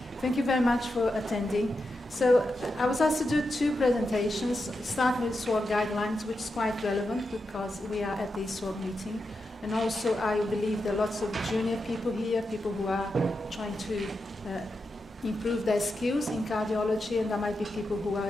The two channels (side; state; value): both; normal; correlation 0.88